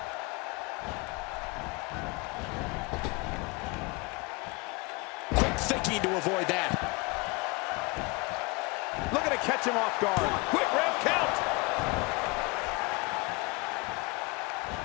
Quick thinking to avoid that. Looking to catch him off guard. Quick ref count.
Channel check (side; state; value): right; quieter; 26.9 dB